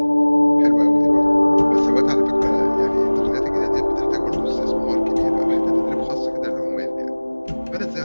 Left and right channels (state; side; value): inverted; both; correlation -1.00